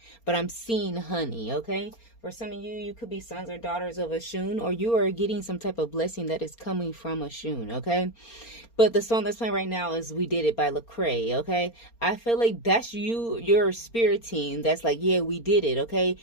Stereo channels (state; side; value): late; right; 4.3 ms